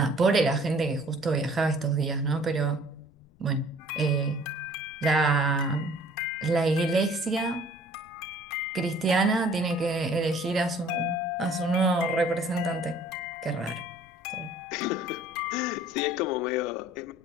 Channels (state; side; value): noise; left; rumble, 29 dB below the sound